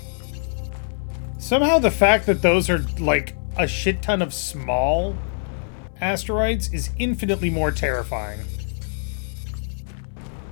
Somehow the fact that those are, like, a shit ton of small asteroids is infinitely more terrifying.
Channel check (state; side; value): silent; right; digital silence